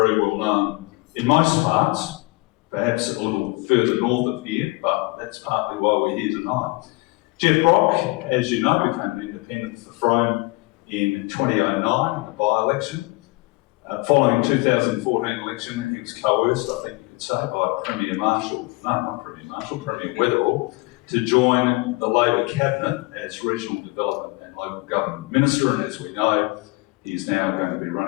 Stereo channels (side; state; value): right; quieter; 25.2 dB